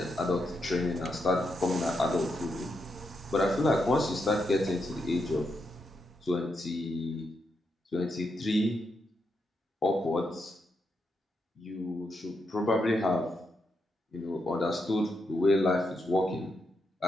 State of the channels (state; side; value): normal; both; correlation 0.83